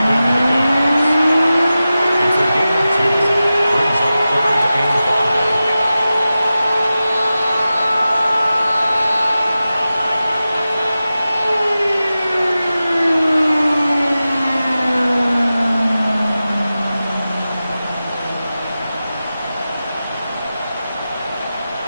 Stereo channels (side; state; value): both; inverted; correlation -0.94